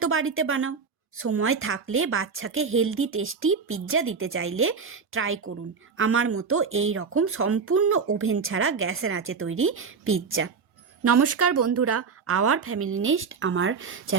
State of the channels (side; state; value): left; quieter; 5.6 dB